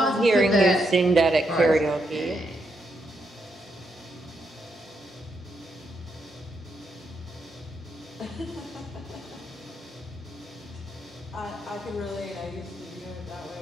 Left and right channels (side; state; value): both; normal; correlation 0.80